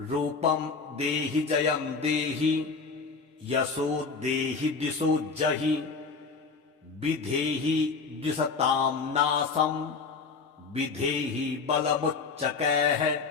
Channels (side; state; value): right; quieter; 4.7 dB